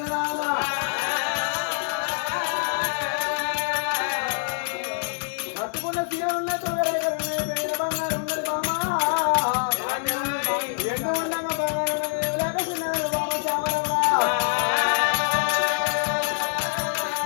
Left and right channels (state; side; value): silent; right; 62 dB below the other